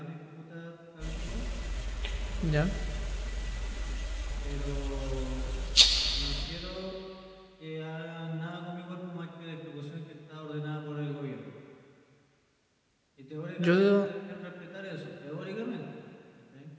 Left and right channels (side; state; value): both; identical; correlation 1.00